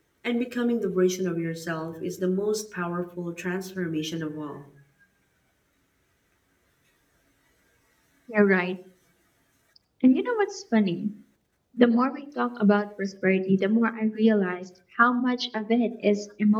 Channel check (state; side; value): identical; both; correlation 1.00